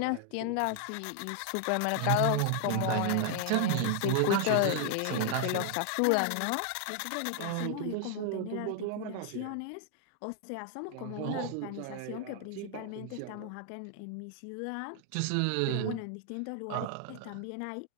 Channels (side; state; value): both; different; correlation 0.00